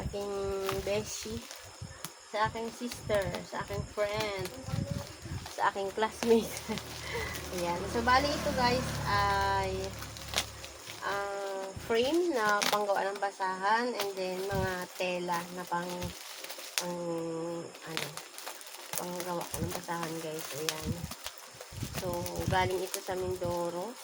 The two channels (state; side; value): identical; both; correlation 1.00